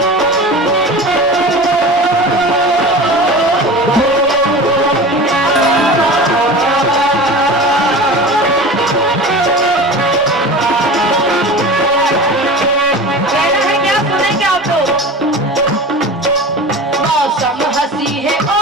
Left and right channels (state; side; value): normal; both; correlation 0.33